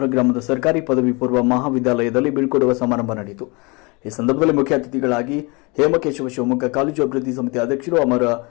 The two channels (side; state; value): right; quieter; 28.0 dB